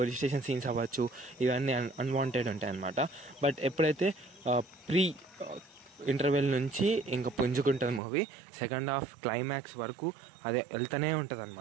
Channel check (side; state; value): left; drops out; at 8.0 s